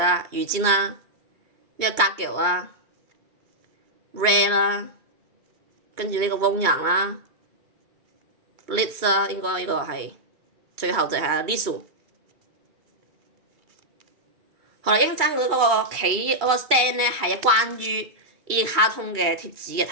魚尖啦，呢個格腳啦。Red 啦，跟住呢個汪洋啦 ，Liz 啦，應該呢個係最後就係 Lisu。好啦，應爭嗰個企嗰個 stand 咧係關於呢啲卡通嘅貼紙嘅，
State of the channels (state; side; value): late; left; 2.3 ms